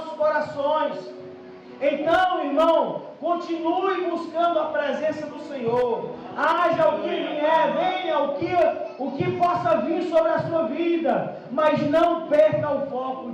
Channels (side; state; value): both; identical; correlation 1.00